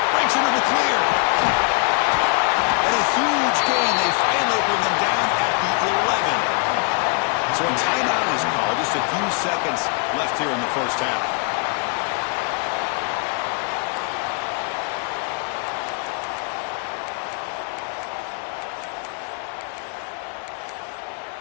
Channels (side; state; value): right; quieter; 35.5 dB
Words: Breaks into the clear. And a huge gain. They finally bring him down at the 11. So a timeout is called. Just a few seconds left here in the 1st half.